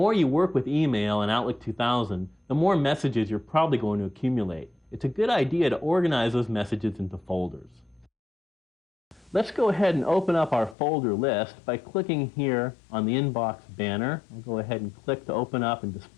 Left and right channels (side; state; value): right; drops out; at 10.8 s